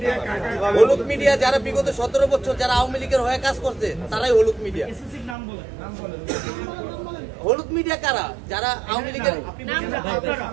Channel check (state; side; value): drops out; left; at 5.4 s